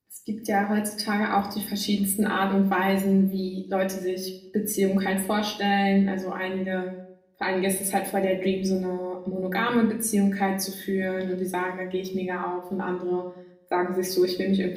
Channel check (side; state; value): both; identical; correlation 1.00